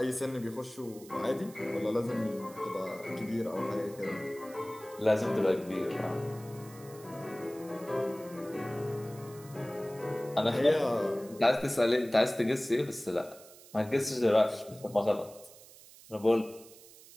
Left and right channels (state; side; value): noise; right; hiss, 21 dB below the sound